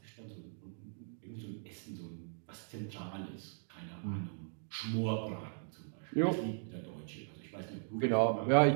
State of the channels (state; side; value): silent; left; digital silence